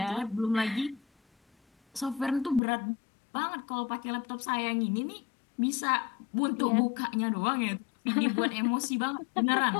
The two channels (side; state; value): right; drops out; at 2.6 s